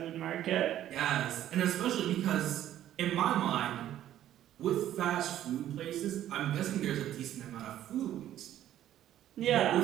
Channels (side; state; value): left; quieter; 12.2 dB